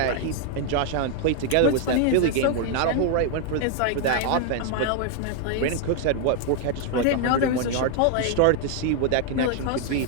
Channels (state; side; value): different; both; correlation 0.00